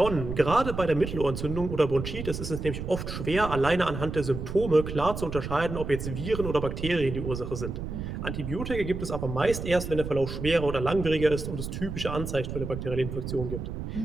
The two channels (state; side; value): noise; right; rumble, 6 dB below the sound